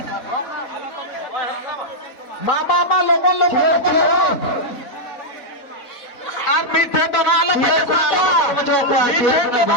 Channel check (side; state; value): right; late; 3.8 ms